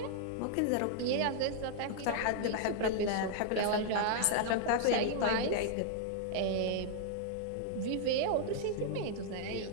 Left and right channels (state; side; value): different; both; correlation -0.01